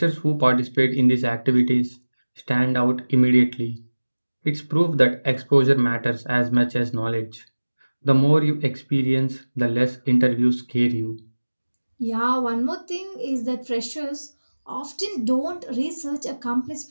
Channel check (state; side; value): inverted; both; correlation -1.00